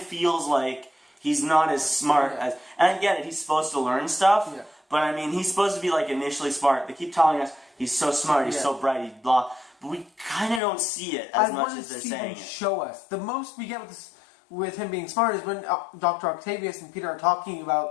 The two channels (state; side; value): drops out; right; at 10.6 s